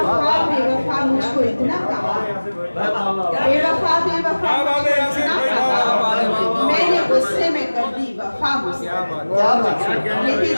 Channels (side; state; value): both; inverted; correlation -1.00